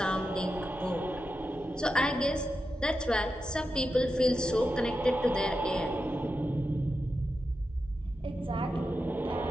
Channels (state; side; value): normal; both; correlation 0.89